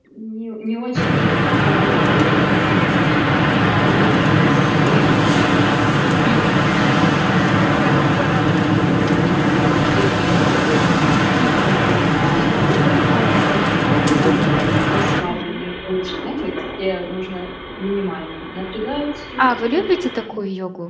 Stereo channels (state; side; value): identical; both; correlation 1.00